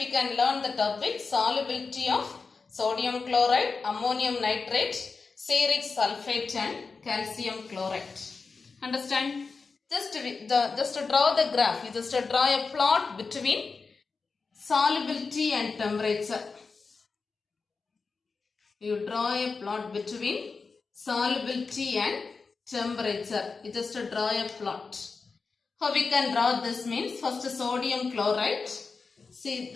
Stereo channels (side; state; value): right; quieter; 4.6 dB